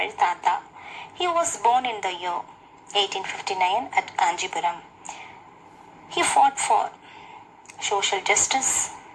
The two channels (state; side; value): identical; both; correlation 1.00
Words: Tata. He was born in the year 1859 at Kanjipuram. He fought for social justice,